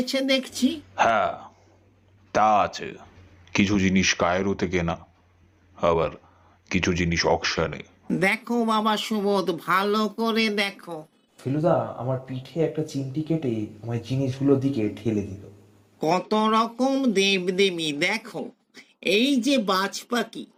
দেখছি। হ্যাঁ, তা আছে। কিছু জিনিস কায়রোতে কেনা, আবার কিছু জিনিস অকশনে। দেখো বাবা সুবোধ, ভালো করে দেখো। ফেলুদা আমার পিঠে একটা চিমটি কেটে আমায় জিনিসগুলোর দিকে ঠেলে দিল। কত রকম দেবদেবী দেখো। এই যে বাজ পাখি,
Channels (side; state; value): both; identical; correlation 1.00